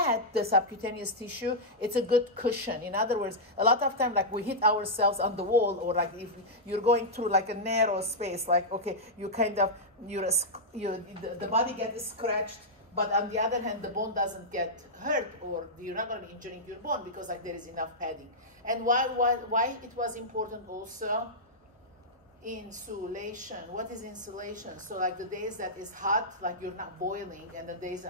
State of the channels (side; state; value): both; normal; correlation -0.09